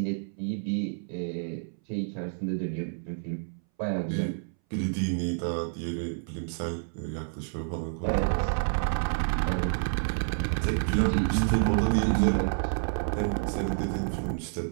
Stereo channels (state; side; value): silent; left; 59 dB below the other